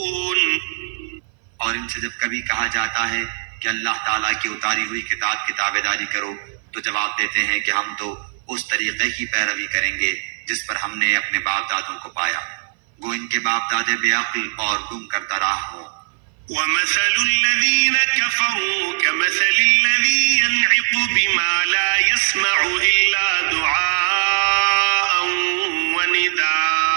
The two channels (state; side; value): silent; left; 58 dB below the other